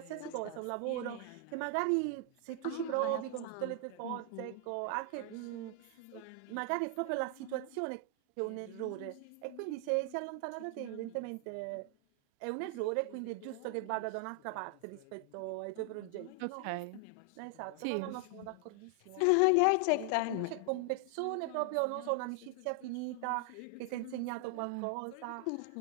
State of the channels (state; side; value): different; both; correlation 0.00